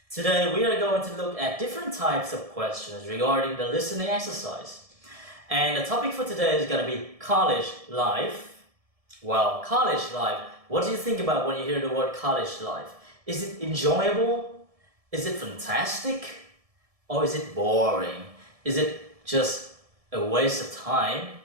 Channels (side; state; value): left; late; 1.7 ms